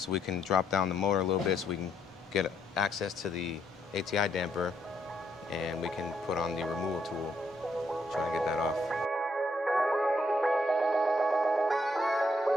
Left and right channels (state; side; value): normal; both; correlation 0.74